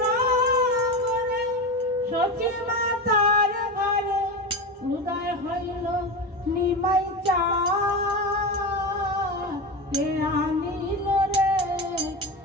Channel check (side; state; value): both; normal; correlation 0.21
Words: নগরে সচি মাতার ঘরে উদয় হইল নিমাই চাঁদ কে আনিল রে